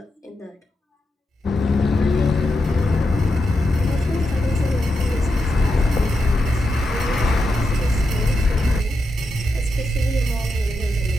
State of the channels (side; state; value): both; normal; correlation 0.86